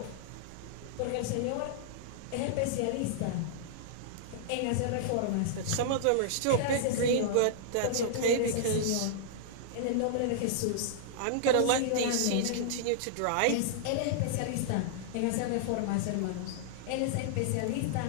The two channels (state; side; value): different; both; correlation -0.01